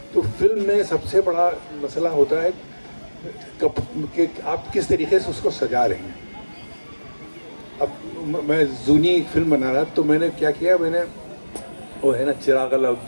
तो फिल्म में सबसे बड़ा मसला होता है कि आप किस तरीके से उसको सजा रहे हैं। अब मैं जूनी फिल्म बना रहा तो मैंने क्या किया, मैंने वो है ना चिराग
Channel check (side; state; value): both; inverted; correlation -1.00